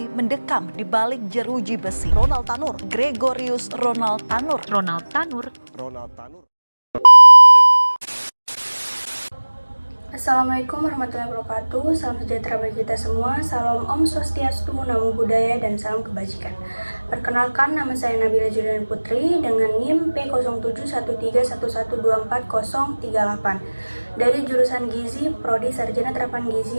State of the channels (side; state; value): both; inverted; correlation -1.00